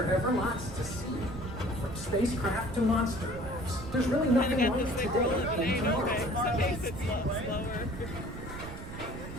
ever lots to see? From spacecraft to monster labs. There's really nothing Got like this thing today rolling. in Ain't okay. Tomorrowland. Some days it's slower.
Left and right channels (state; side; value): noise; right; rumble, 11 dB below the sound